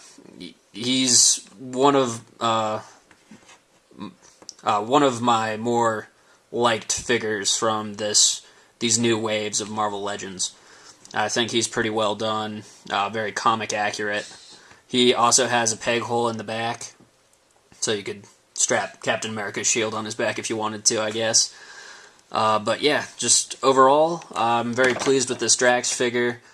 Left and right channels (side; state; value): both; identical; correlation 1.00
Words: he's one of my more liked figures from these new waves of Marvel Legends. I think he's pretty well done, very comic accurate. He also has a peg hole in the back, so you could strap Captain America's shield on his back if you wanted to, I guess. But yeah, just overall, I'm very pleased with this Drax figure,